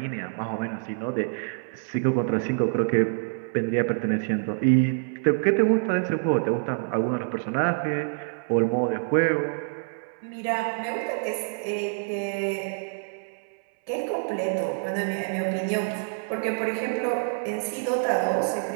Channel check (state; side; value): silent; left; 60 dB below the other